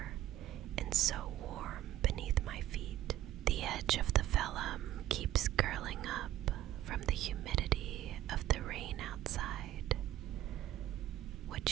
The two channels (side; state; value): left; quieter; 13.6 dB